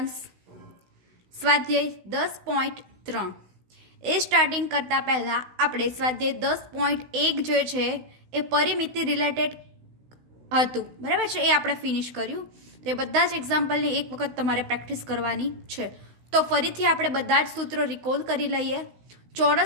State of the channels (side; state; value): left; late; 16 ms